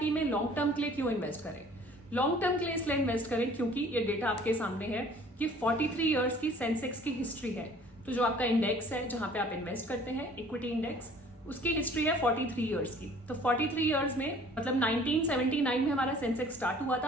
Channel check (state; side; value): normal; both; correlation 0.52